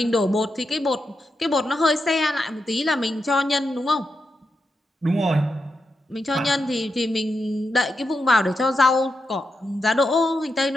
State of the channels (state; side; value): normal; both; correlation 0.86